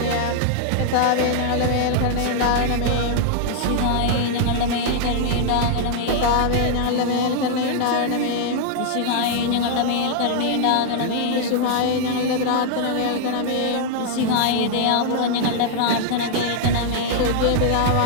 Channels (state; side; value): different; both; correlation -0.01